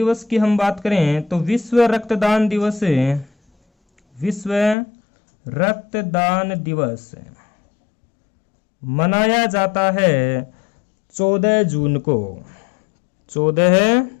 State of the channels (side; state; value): right; drops out; at 4.8 s